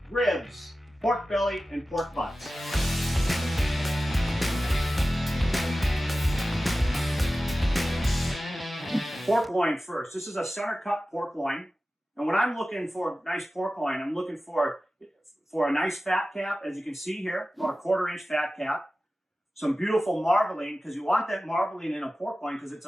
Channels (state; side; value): normal; both; correlation 0.95